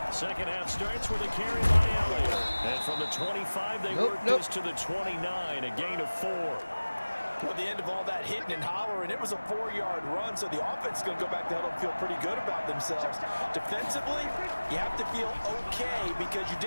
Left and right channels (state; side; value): inverted; both; correlation -1.00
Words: Second half starts with a carry by Elliott. And from the 25, they work this to the 29, a gain of 4. At the end of all that hitting and hollering, it was a 4-yard run, so the offense is going to go back to huddle and feel pretty good about themselves. Defensively, you have to feel okay because you